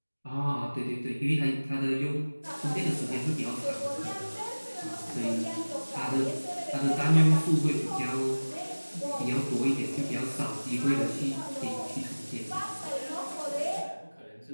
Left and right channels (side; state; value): both; inverted; correlation -1.00